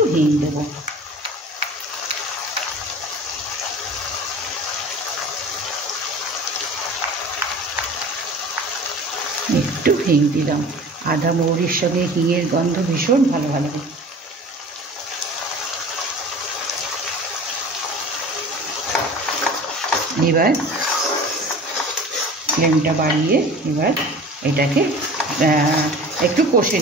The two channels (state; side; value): normal; both; correlation 0.41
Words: হিং দেব। একটু হিং দিলাম। আদা মৌরির সঙ্গে হিঙের গন্ধ ভীষণ ভালো লাগে। এবার ফ্লেমটা বাড়িয়ে এবার এটাকে একটু কষে